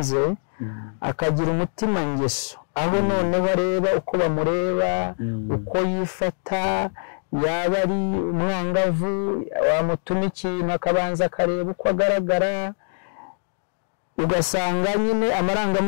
akagira umutima ngeso, aho noneho areba uko bamureba, uko yifata, yaba ari umwangavu wamutuma ikintu akabanza akareba uko agaragara, ugasanga nyine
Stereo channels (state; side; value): silent; right; digital silence